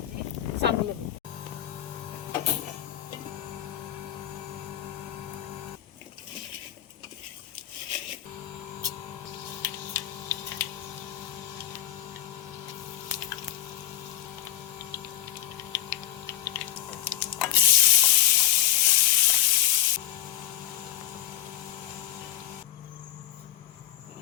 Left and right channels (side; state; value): right; quieter; 12.7 dB